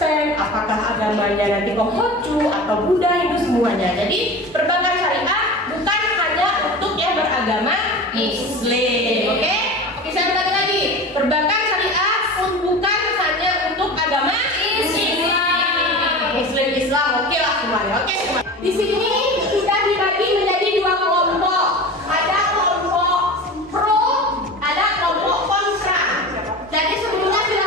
apakah agamanya nanti Konghucu atau Buddha, Hindu, semuanya. Jadi perbankan syariah bukan hanya untuk yang beragama Muslim. Oke, saya ulangi lagi. Perbankan syariah bukan hanya untuk agama Islam. Oke lah semuanya. Oke semuanya. Di sini sudah dibagi menjadi dua kelompok. Ada kelompok pro, ada kelompok kontra. Jadi sebelumnya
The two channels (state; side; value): normal; both; correlation 0.32